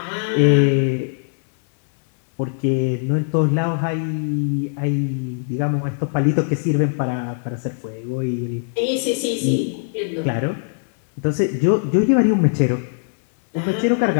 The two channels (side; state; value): right; silent; digital silence